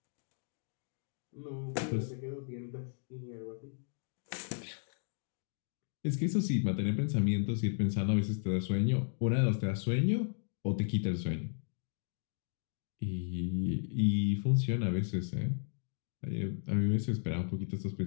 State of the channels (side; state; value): right; silent; digital silence